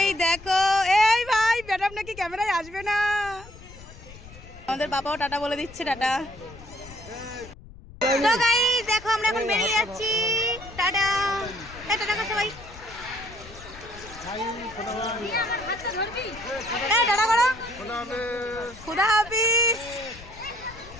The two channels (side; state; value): left; noise; rumble, 18 dB below the sound